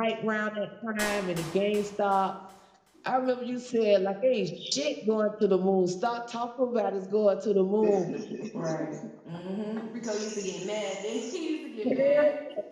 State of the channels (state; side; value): identical; both; correlation 1.00